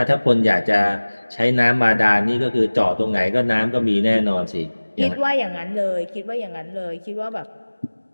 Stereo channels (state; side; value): inverted; both; correlation -1.00